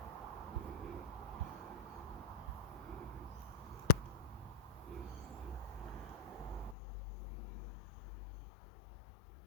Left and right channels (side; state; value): right; drops out; at 6.8 s